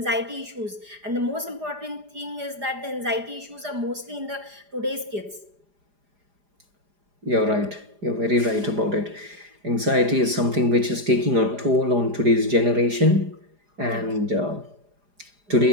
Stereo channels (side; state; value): left; late; 4.9 ms